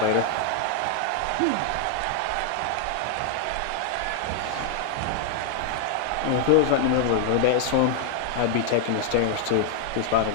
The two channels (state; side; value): different; both; correlation 0.00